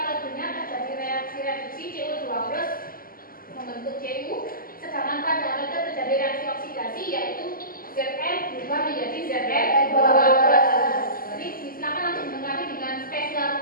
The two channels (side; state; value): right; late; 0.42 ms